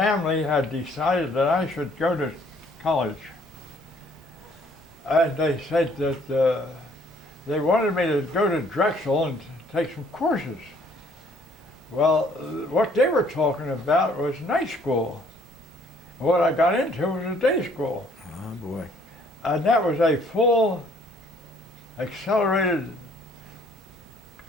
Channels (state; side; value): normal; both; correlation 0.62